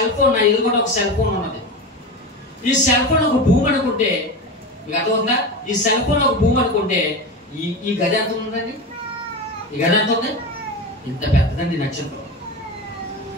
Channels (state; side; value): normal; both; correlation 0.24